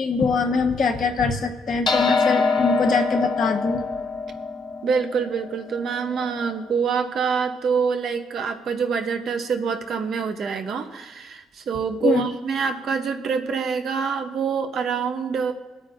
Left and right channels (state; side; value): normal; both; correlation 0.69